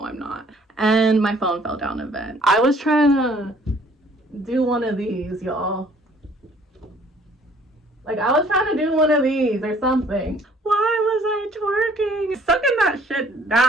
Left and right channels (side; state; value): both; normal; correlation 0.58